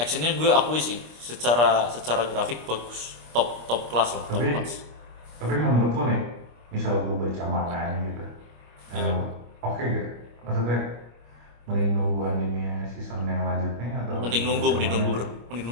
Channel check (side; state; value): left; late; 25 ms